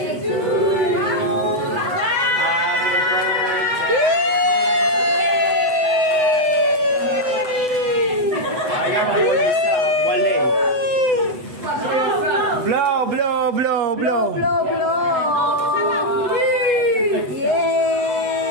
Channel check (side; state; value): left; late; 8.0 ms